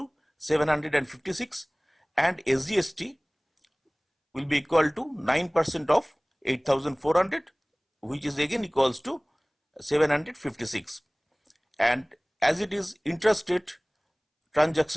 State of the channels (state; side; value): identical; both; correlation 1.00